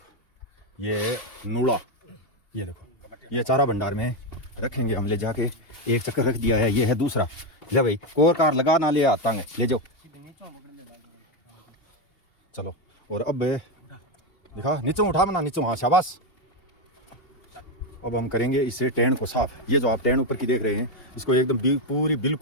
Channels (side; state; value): right; late; 2.8 ms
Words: ये नूड़ा, ये देखो ये चारा भंडार में रखेंगे हम, ले जाके एक चक्कर रख दिया है। ये है दूसरा, ले भाई कोर कार लगा ना ले आता है, ले जाओ चलो। और अब देखा नीचे उठा बना, नीचे, हाँ शाबाश। अब हम करेंगे इससे टेन को साफ। ये जो आप टेन ऊपर की देख रहे हैं इसको एकदम पूरी